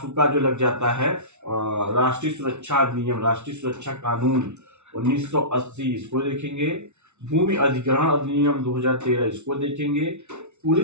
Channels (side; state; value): left; late; 0.82 ms